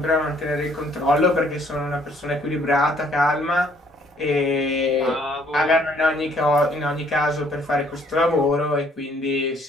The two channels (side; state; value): both; normal; correlation 0.63